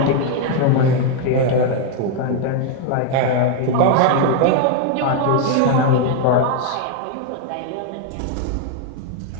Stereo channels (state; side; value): different; both; correlation 0.01